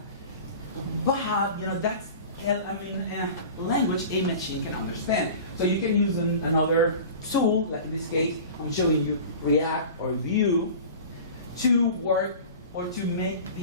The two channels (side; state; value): both; inverted; correlation -0.38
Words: But that's language a machine can understand. So you can use another tool, like in this case, I'm showing you React or Vue, to work or to make